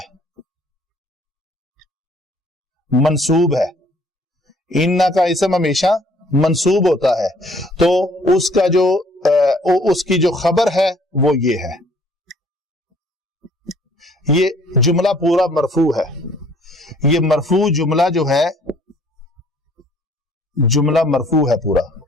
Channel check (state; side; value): normal; both; correlation 0.59